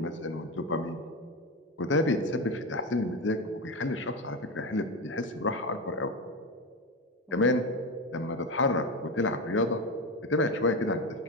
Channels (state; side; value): normal; both; correlation 0.17